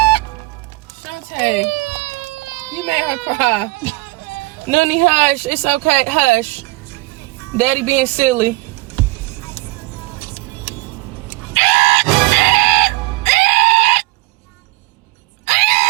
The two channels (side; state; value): left; quieter; 21.8 dB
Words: let her cry. Noonie, hush. It's okay. Hush. Daddy being silly.